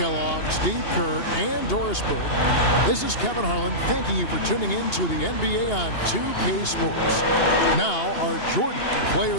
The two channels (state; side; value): late; right; 2.8 ms